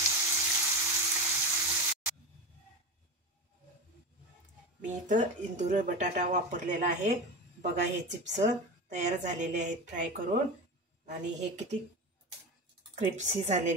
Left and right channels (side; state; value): both; normal; correlation 0.24